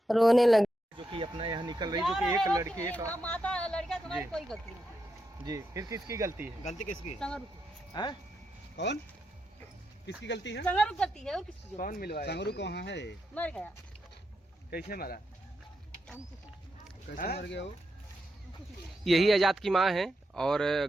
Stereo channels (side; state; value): both; normal; correlation 0.84